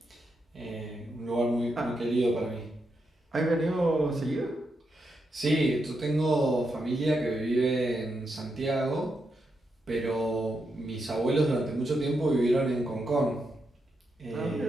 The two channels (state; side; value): normal; both; correlation 0.84